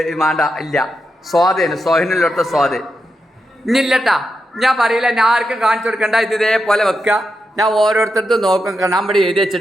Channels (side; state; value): both; normal; correlation 0.86